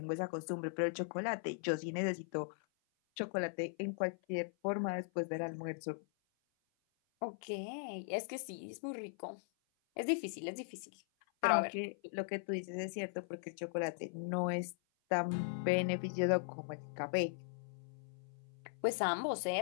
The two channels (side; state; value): right; silent; 52 dB below the other